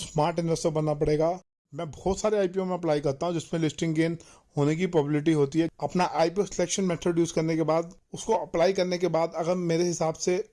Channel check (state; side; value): identical; both; correlation 1.00